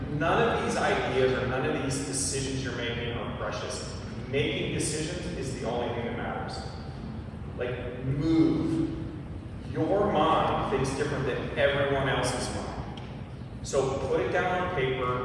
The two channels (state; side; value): identical; both; correlation 1.00